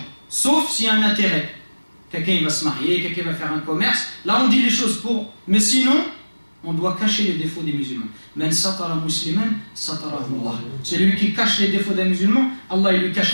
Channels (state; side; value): inverted; both; correlation -1.00